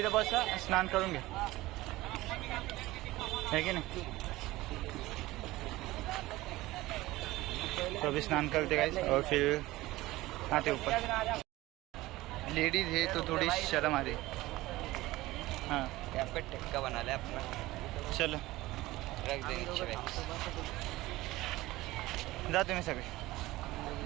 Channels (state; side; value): quieter; left; 18.3 dB